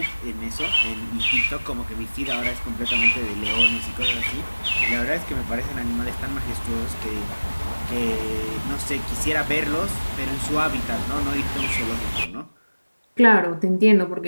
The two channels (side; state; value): both; inverted; correlation -1.00